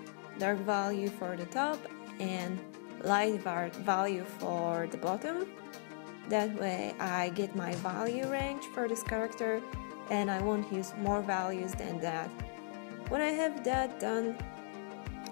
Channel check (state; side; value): silent; right; digital silence